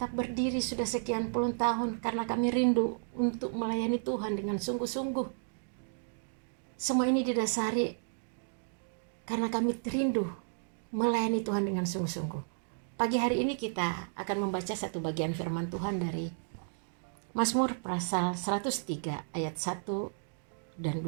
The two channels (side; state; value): left; silent; digital silence